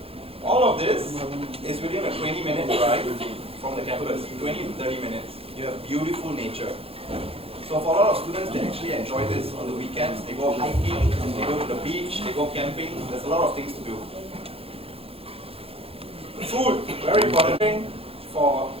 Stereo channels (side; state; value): left; late; 0.28 ms